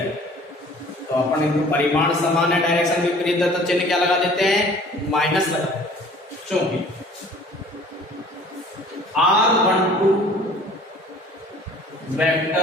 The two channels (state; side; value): normal; both; correlation 0.50